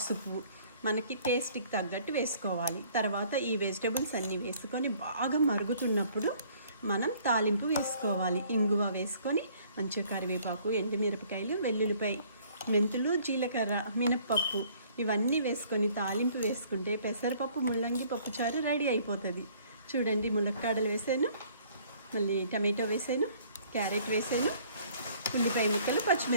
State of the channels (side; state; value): both; inverted; correlation -0.58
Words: మనకి టేస్ట్కి తగ్గట్టు వేసుకోవాలి. తర్వాత ఈ వెజిటబుల్స్ అన్నీ వేసుకొని బాగా మరుగుతున్నప్పుడు మనం తాలింపు వేసుకోవాలి. ఇంగువ వేసుకొని మంచిగా కరివేపాకు, ఎండుమిరపకాయలు, వెల్లుల్లిపాయ, మెంతులు, జీలకర్ర, మినప్పప్పు ఇవన్నీ వేసుకొని తాలింపు వేసుకుంటే పెసరపప్పు ముల్లంగి పప్పుచారు రెడీ అయిపోతుంది. చూడండి, ములక్కాడలు వేసాను, మళ్ళీ టమాటో వేసాను, క్యారెట్ వేసాను, ఉల్లిపాయ ముక్కలు,